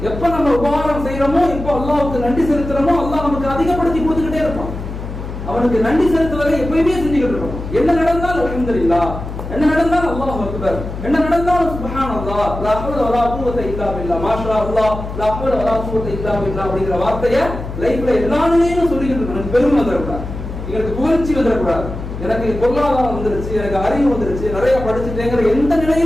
எப்ப நம்ம உபகாரம் செய்யறோமோ, எப்ப அல்லாஹ்வுக்கு நன்றி செலுத்துறோமோ, அல்லாஹ் நமக்கு அதிகப்படுத்தி கொடுத்துக்கிட்டே இருப்பான். அவனுக்கு நன்றி செலுத்துவதை எப்பயுமே செஞ்சுக்கிட்டு இருக்கணும். என்ன நடந்தாலும் அல்ஹம்துலில்லாஹ், என்ன நடந்தாலும் அல்லாஹ் அக்பர், என்ன நடந்தாலும் சுப்ஹானல்லாஹ், லா ஹவ்ல வலா குவத இல்லா பில்லாஹ், மாஷா அல்லாஹ், லா ஹவ்ல வலா குவத இல்லா பில்லாஹ் அப்படிங்கிற வார்த்தையை லைஃப்ல எல்லா நிலையிலும் சொல்லிக்கிட்டு இருக்கணும். எனக்கு பெருமை வந்துடக்கூடாது, எனக்கு புகழ்ச்சி வந்துடக்கூடாது, எனக்கு பொருளாதாரம் வந்துருச்சு, எனக்கு அறிவு வந்துருச்சு, நிறைய படிச்சுட்டேங்கிற எந்த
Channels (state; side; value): noise; left; hum, 8 dB below the sound